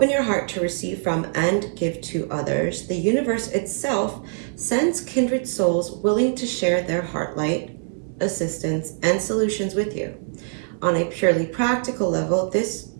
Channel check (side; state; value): left; silent; 63 dB below the other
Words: your heart to receive from and give to others, the universe itself sends kindred souls willing to share their heart light, assistance, and solutions with you. On a purely practical level, this